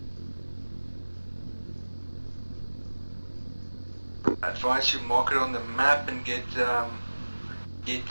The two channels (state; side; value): inverted; both; correlation -1.00